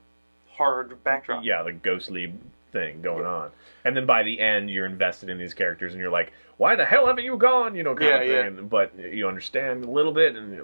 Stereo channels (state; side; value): inverted; both; correlation -1.00